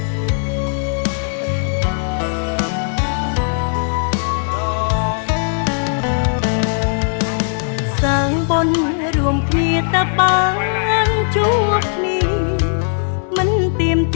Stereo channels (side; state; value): right; silent; 65 dB below the other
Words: រួមគ្នាតែបានជួបគ្នាមិនទៀម